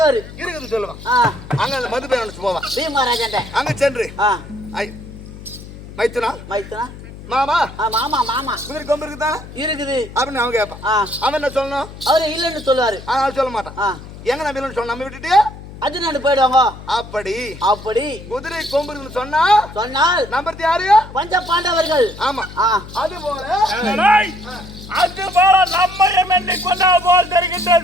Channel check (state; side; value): noise; left; hum, 15 dB below the sound